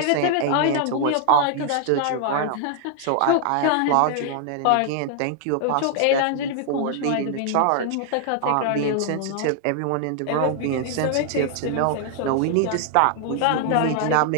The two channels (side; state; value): both; different; correlation 0.00